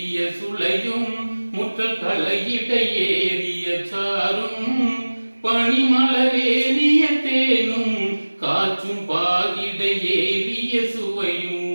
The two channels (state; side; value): inverted; both; correlation -1.00